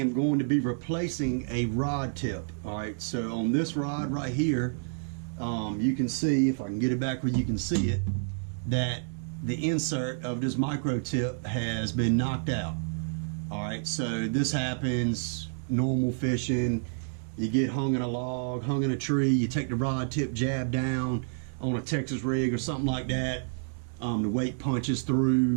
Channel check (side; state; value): left; silent; digital silence